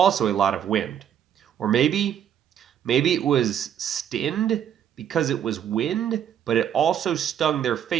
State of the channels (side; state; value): left; quieter; 9.5 dB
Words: a lot of wind. Or maybe it was stinned because it was wind, but it also stung their